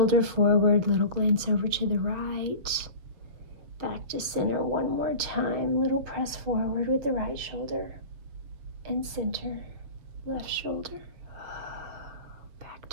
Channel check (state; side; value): late; left; 7.0 ms